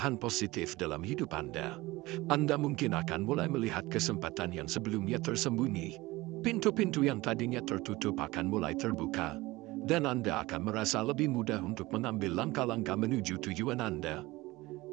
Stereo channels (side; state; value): left; quieter; 20.2 dB